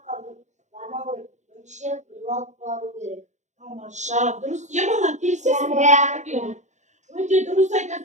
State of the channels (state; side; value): late; left; 0.34 ms